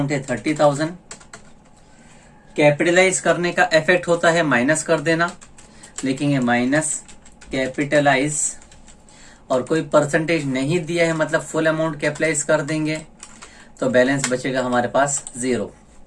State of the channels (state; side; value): identical; both; correlation 1.00